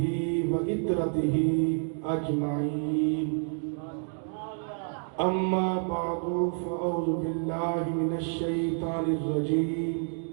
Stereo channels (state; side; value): silent; left; 58 dB below the other